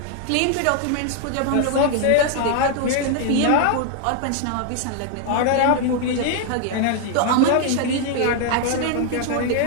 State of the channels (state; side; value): different; both; correlation 0.00